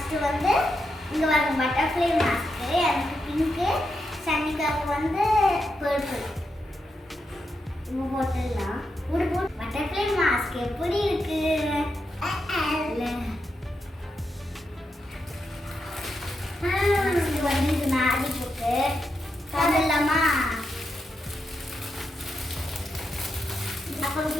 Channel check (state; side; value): normal; both; correlation 0.85